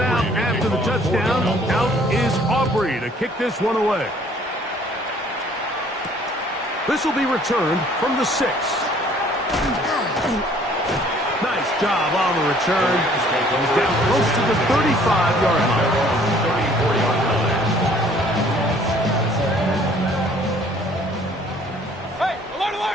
after the touchdown, out is Aubrey to kick this one away. This will be returned from the 6. Nice job on the return. He's down close to the 35-yard line. Hey, alert,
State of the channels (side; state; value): both; normal; correlation 0.57